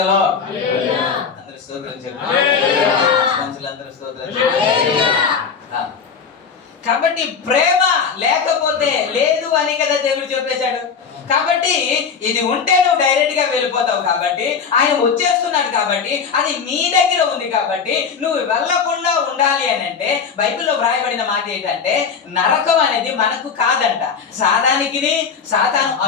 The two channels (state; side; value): quieter; right; 6.2 dB